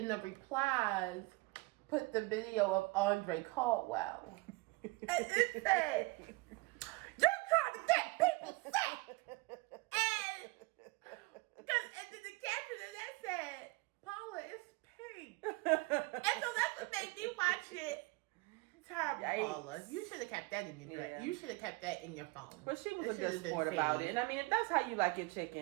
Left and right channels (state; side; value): quieter; left; 24.2 dB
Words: the replies put the video of Andre Caldwell. And it said, "You're trying to get people sick." And then the caption of that said, "Paula, it's pink." And so that's what made me watch it. Terrible, Yikes. Paula. You should have kept that in your dress. Yeah. You should have kept that in your phone. But she was It a should good have been sport about saved. it. And I mean, if that's how you like your